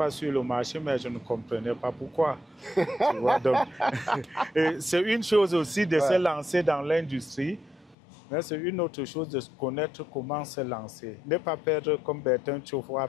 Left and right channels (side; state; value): right; drops out; at 8.0 s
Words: sur le marché, mais je ne comprenais pas pourquoi. Tu vois, donc, c'est une chose aussi de se lancer dans l'industrie, mais c'est une autre chose de connaître comment se lancer. Ne pas perdre comme Bertin Tchofo a